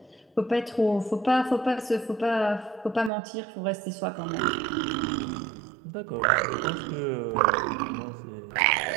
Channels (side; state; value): left; drops out; at 3.1 s